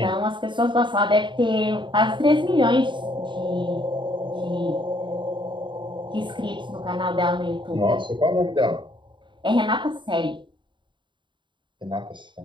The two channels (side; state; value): left; late; 0.23 ms